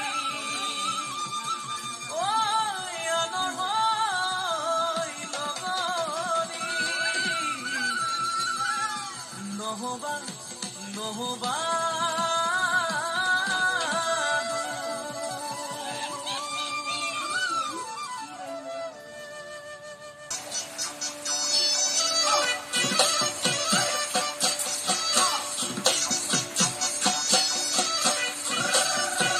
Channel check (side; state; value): both; identical; correlation 1.00